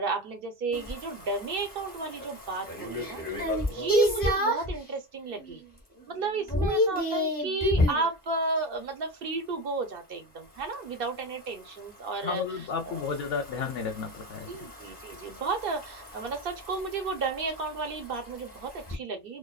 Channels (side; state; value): both; normal; correlation 0.22